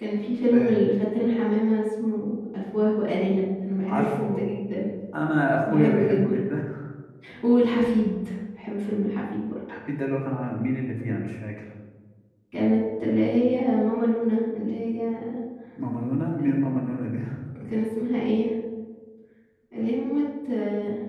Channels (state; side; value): identical; both; correlation 1.00